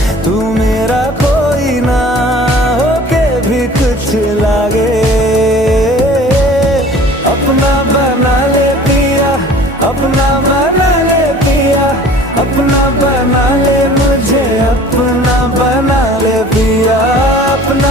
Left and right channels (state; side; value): normal; both; correlation 0.47